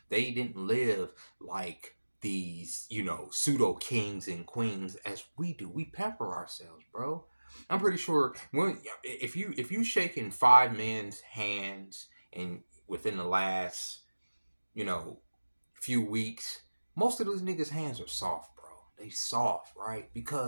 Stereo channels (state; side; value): inverted; both; correlation -1.00